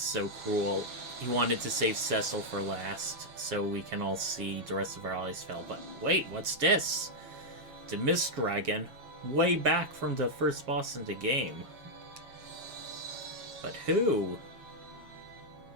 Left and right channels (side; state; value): left; late; 7.3 ms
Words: so cruel. He wanted to save Cecil for last, so we can all see the rest of our allies fell. But wait, what's this? The Mist Dragon, way back from the first boss in the game. But who?